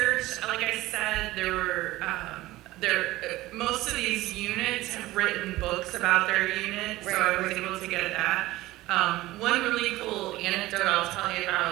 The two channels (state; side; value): quieter; left; 17.5 dB